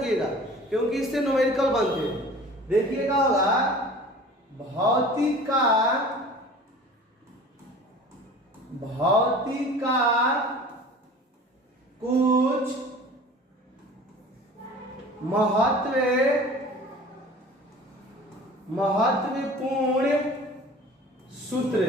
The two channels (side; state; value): both; normal; correlation 0.43